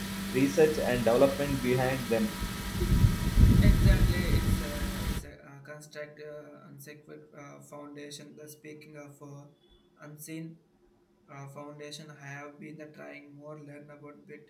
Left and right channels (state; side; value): identical; both; correlation 1.00